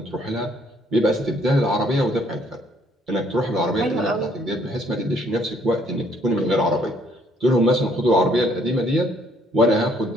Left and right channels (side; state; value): both; normal; correlation 0.64